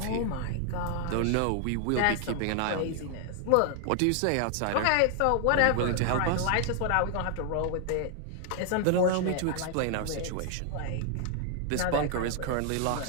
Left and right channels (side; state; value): both; different; correlation 0.00